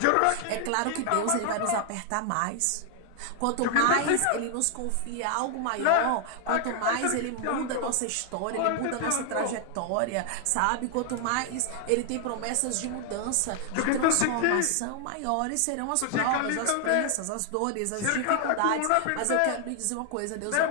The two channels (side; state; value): both; different; correlation 0.00